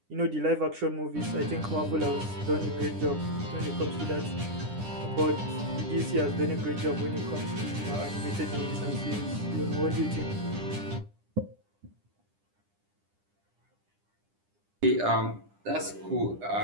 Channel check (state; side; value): late; left; 9.9 ms